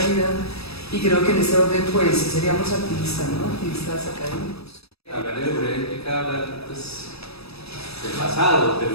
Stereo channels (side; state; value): right; late; 0.78 ms